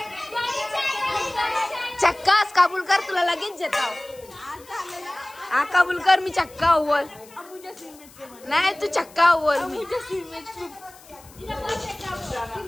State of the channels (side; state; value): left; noise; hiss, 23 dB below the sound